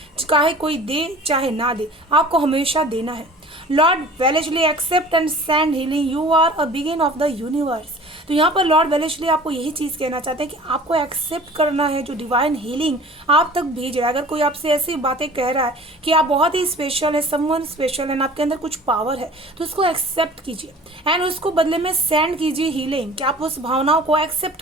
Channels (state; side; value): normal; both; correlation 0.45